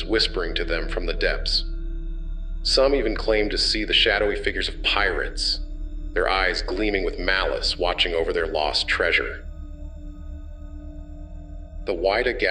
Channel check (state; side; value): identical; both; correlation 1.00